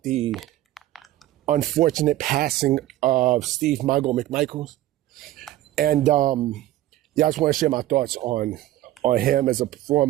the unfortunate passing of Steve Mongo McMichael. And I just want to share my thoughts on him as a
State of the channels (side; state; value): left; quieter; 14.6 dB